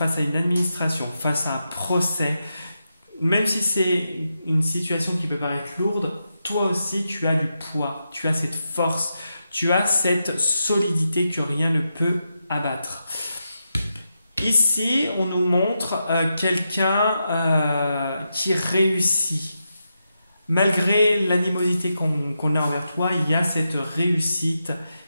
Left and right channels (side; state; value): both; inverted; correlation -0.86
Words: à une administration, face à un procès. Même si c'est une situation qui peut paraître lourde, toi aussi tu as du poids, tu as cette force, tu as cette solidité que rien ne peut abattre. Ici, on nous montre quelqu'un qui réussit. Malgré l'animosité qu'on a envers toi, il y a cette réussite